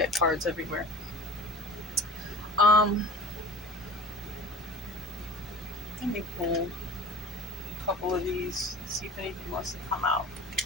cards everywhere. Let me pull a couple of these, see if anything wants to come out.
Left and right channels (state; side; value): normal; both; correlation 0.39